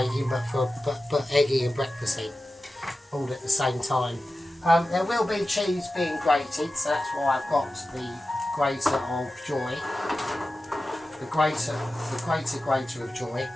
but eggy and breakfasty, all at the same time. There will be cheese being grated, so that's why I've got the grater of joy. The grater of joy.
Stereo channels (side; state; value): both; normal; correlation 0.94